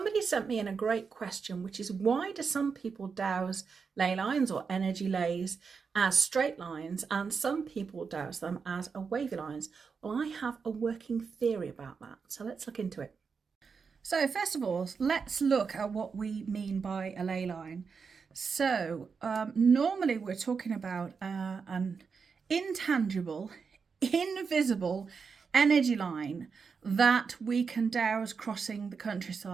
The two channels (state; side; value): quieter; left; 5.5 dB